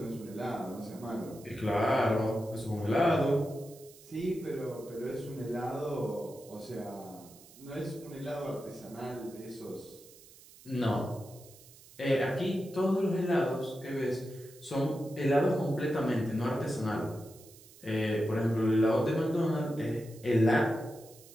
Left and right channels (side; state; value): right; noise; hiss, 22 dB below the sound